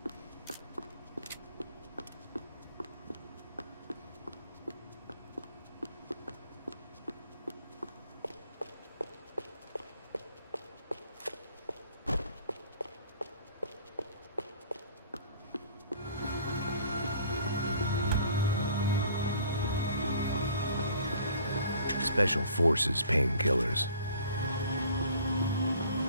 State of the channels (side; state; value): both; inverted; correlation -0.53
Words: Special Forces painkillers.